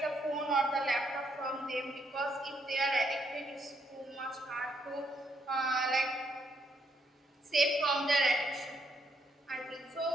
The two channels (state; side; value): normal; both; correlation 0.74